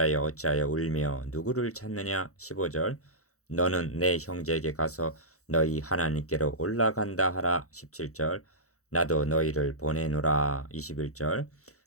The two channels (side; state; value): right; late; 0.65 ms